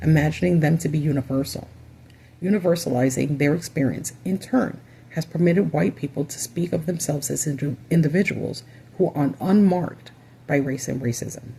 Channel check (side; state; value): both; identical; correlation 1.00